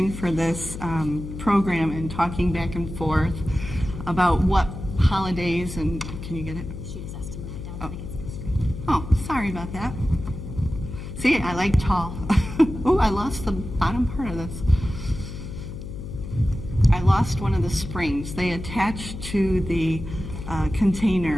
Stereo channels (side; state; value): left; noise; hum, 9 dB below the sound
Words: for this program and talking back and forth about what holidays and, can you get it? She just has to move it down so they can see the screen. Oh, sorry about that. See, I like tall. Oh, I lost the bottom part of this. I lost one of the springs. They attach to the